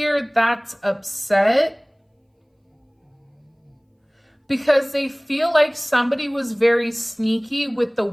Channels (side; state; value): both; identical; correlation 1.00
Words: that's upset because they feel like somebody was very sneaky with the